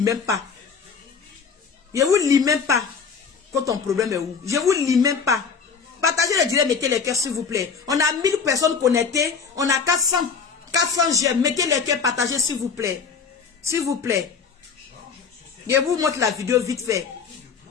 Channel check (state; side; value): quieter; right; 5.8 dB